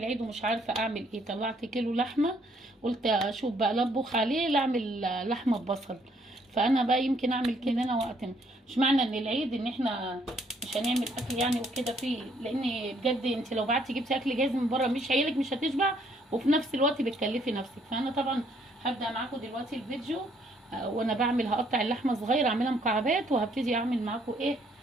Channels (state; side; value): normal; both; correlation 0.67